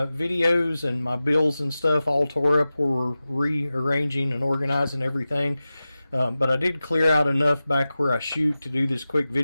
videos and my bills and stuff all tore up where we're rearranging and organizing everything. But I did clear out enough back where I shoot to do this quick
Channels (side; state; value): both; inverted; correlation -0.95